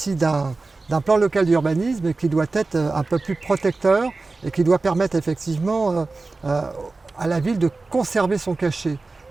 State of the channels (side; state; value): left; quieter; 3.6 dB